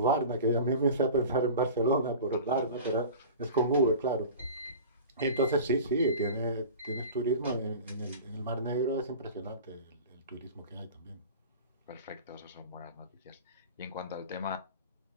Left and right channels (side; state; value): both; inverted; correlation -0.37